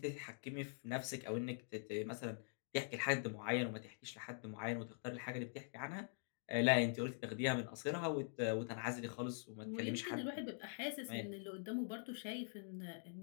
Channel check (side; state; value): right; silent; digital silence